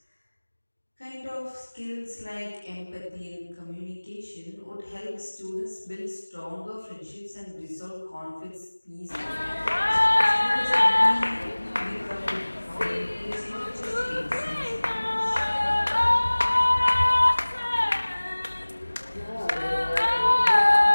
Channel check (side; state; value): both; inverted; correlation -1.00